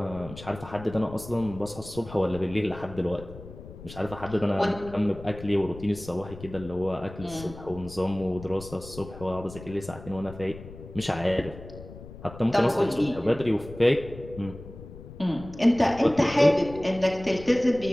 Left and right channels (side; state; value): left; noise; rumble, 15 dB below the sound